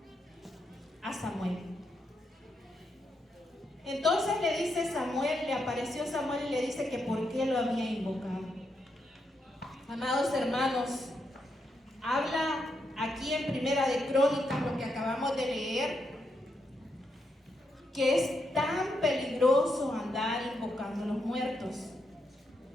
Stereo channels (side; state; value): both; normal; correlation 0.81